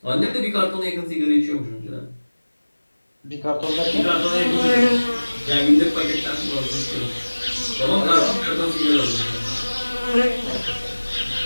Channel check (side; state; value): both; inverted; correlation -1.00